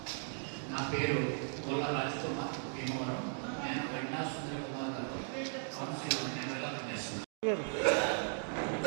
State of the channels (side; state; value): left; silent; 53 dB below the other